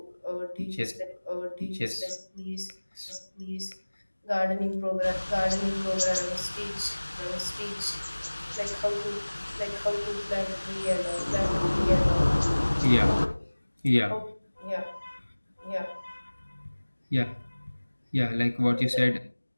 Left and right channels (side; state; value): both; inverted; correlation -1.00